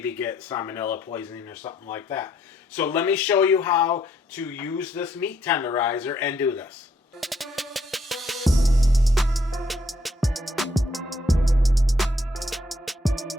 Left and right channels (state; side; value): normal; both; correlation 0.71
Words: get salmonella poisoning or something like that. So let me show you how to use this meat tenderizer and do this.